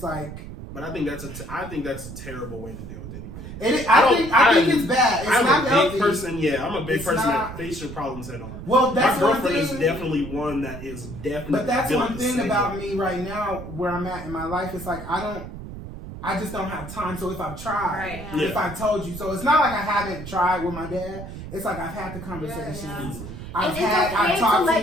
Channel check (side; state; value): right; noise; rumble, 11 dB below the sound